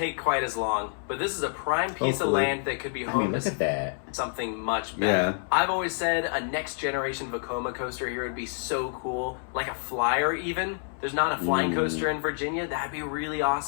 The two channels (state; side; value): silent; right; 59 dB below the other